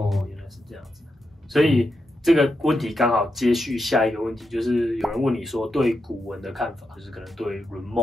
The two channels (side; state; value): both; normal; correlation 0.86